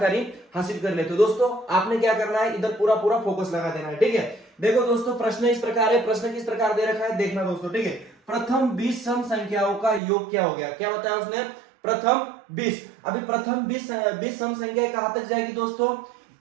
हासिल कर लेते हैं। दोस्तों आपने क्या करना है, इधर पूरा पूरा फोकस लगा देना है, ठीक है। देखो दोस्तों प्रश्न इस प्रकार है, प्रश्न किस प्रकार दे रखा है देखना दोस्तों, ठीक है। प्रथम 20 सम संख्याओं का योग क्या हो गया, क्या बताया उसने, प्रथम 20। अभी प्रथम 20 सम संख्या कहां तक जाएगी दोस्तों,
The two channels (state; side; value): drops out; left; at 10.0 s